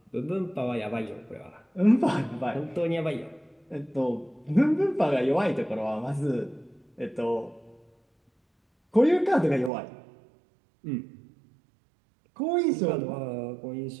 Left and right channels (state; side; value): drops out; left; at 9.7 s